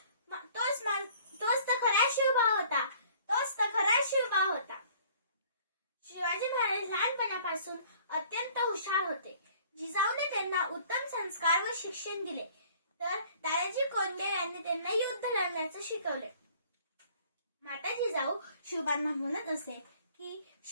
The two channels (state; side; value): inverted; both; correlation -0.55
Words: तोच तर खरा शिवभाव होता. तोच तर खरा शिवभाव होता. शिवाजी महाराज लहानपणापासून अत्यंत हुशार होते. जिजाऊने त्यांना उत्तम संस्कार व शिक्षण दिले तर दादाजी कोंडदेव यांनी त्यांना युद्ध लढण्याचे शिकवले. माता जिजाऊ शिवबांना म्हणत असे की